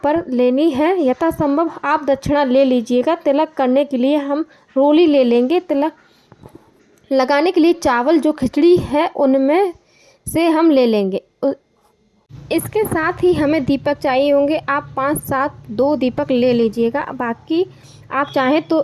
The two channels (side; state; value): both; identical; correlation 1.00